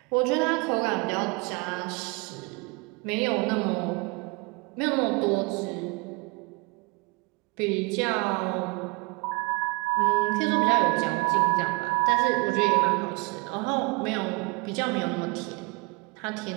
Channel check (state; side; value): quieter; left; 27.8 dB